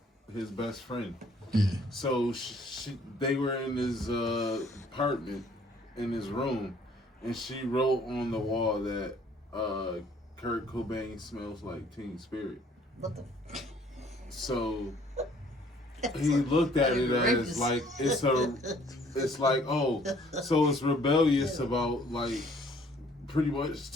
best friend. Yeah. So they were in his apartment, in his room, and she wrote on the wall that Kurt Cobain smells like Teen Spirit. What the? So he looked at it as like it's like, oh, so it's rebellious about like pretty much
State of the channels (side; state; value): both; normal; correlation 0.59